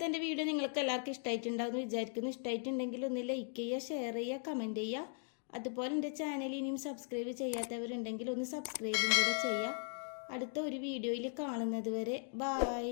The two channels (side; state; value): right; silent; 52 dB below the other